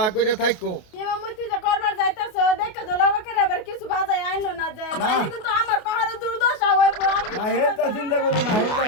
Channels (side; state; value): right; late; 28 ms